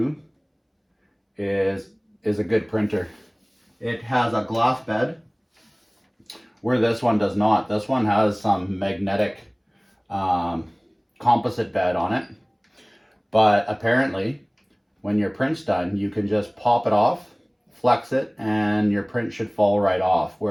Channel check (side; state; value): both; identical; correlation 1.00